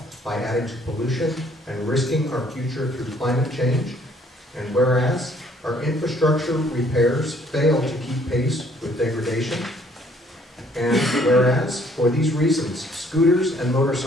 by adding to pollution and risking our future through climate change. And whereas Our infrastructure repairs fail to keep pace with degradation. And whereas, for these reasons, scooters and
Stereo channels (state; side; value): normal; both; correlation 0.62